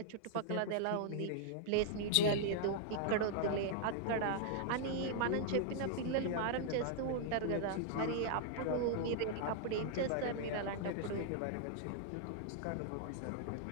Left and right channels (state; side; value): different; both; correlation -0.01